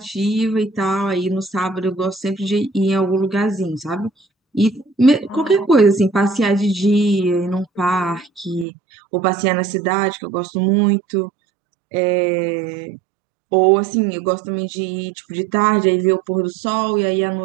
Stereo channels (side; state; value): left; drops out; at 8.7 s